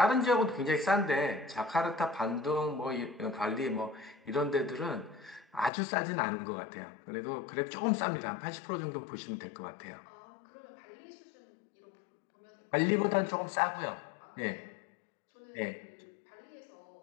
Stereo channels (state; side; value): drops out; right; at 5.7 s